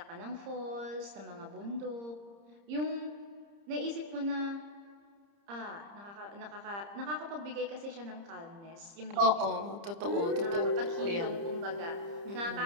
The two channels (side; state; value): left; late; 30 ms